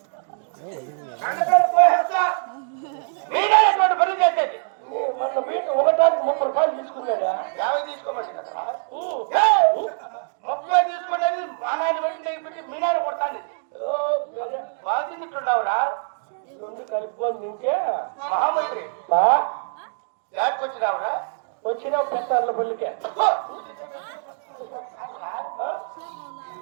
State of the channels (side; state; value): left; silent; digital silence